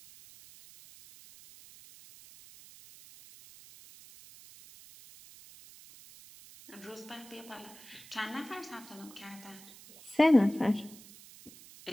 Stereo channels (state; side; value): noise; right; hiss, 20 dB below the sound